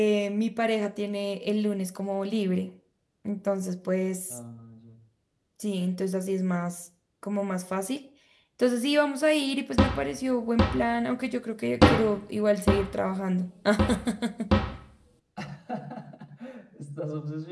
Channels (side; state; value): both; identical; correlation 1.00